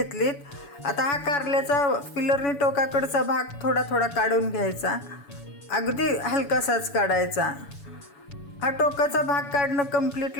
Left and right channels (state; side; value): late; right; 7.0 ms